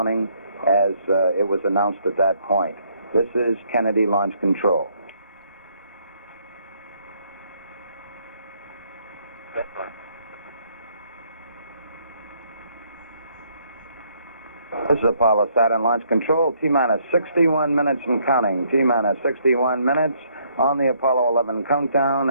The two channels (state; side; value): inverted; both; correlation -0.69